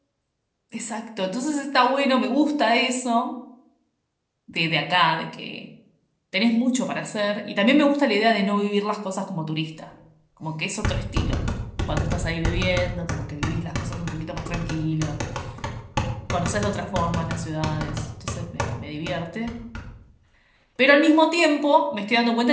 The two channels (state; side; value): identical; both; correlation 1.00